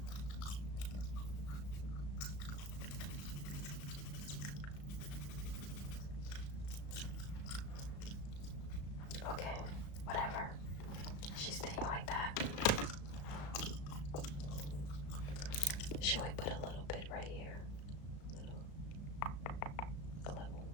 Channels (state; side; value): late; right; 35 ms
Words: Okay, whatever. She's staying like that. Should we put a little bit right here? A